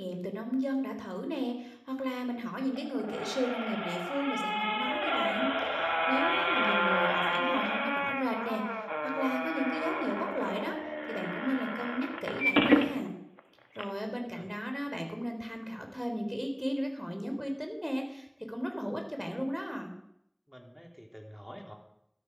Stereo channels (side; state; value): both; identical; correlation 1.00